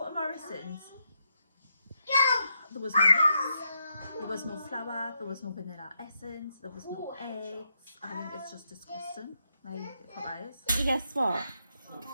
to Morrison's, there was no milk, there was no flour, there was no vanilla essence, there was no eggs. I think it's just disgusting. Like, providers. Guess what?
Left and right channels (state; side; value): inverted; both; correlation -0.81